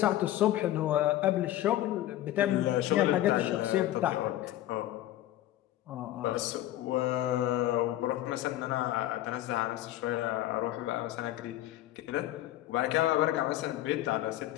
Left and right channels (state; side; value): quieter; right; 14.1 dB